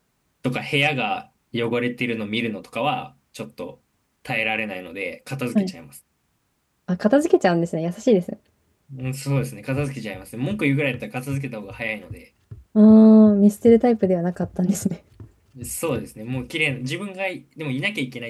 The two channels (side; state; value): both; identical; correlation 1.00